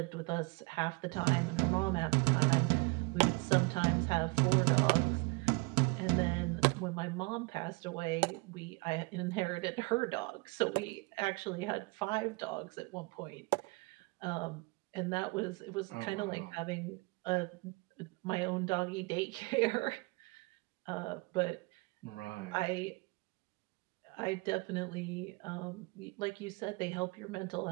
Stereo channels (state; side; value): quieter; left; 28.3 dB